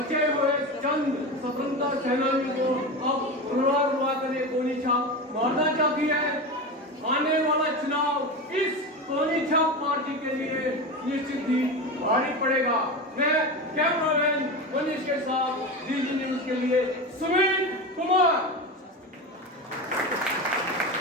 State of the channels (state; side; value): normal; both; correlation 0.23